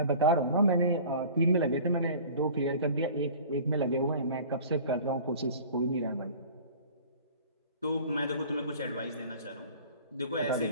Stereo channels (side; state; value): both; inverted; correlation -0.44